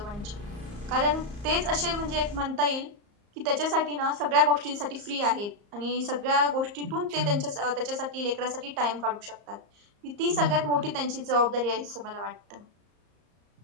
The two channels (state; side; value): late; left; 34 ms